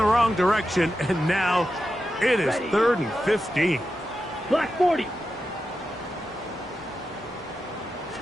wrong direction, and now it is 3rd and 15. Black 40.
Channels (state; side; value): normal; both; correlation 0.90